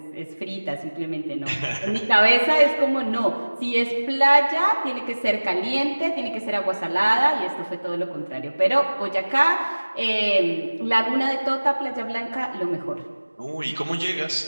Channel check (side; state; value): both; inverted; correlation -1.00